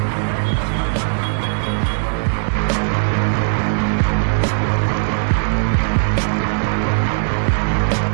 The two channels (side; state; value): left; silent; digital silence